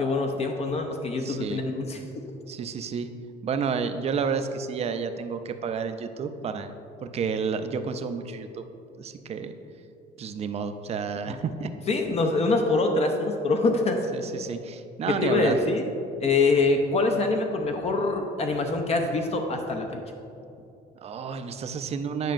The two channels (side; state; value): both; normal; correlation 0.46